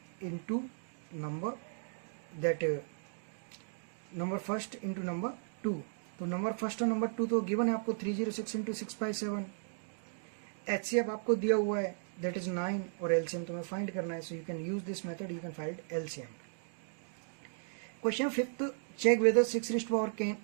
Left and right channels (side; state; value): left; silent; digital silence